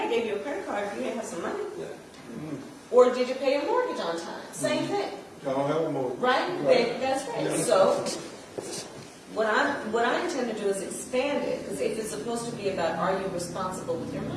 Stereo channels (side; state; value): both; identical; correlation 1.00